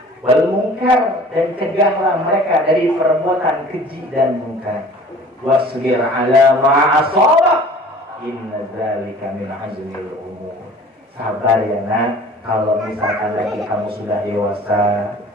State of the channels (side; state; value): both; normal; correlation 0.47